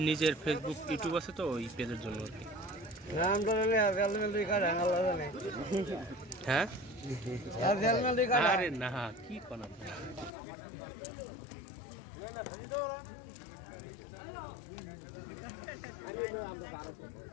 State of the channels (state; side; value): drops out; right; at 10.3 s